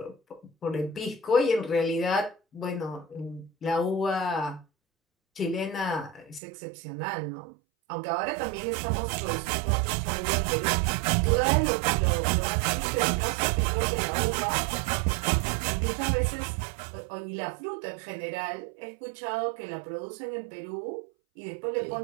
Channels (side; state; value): left; drops out; at 6.4 s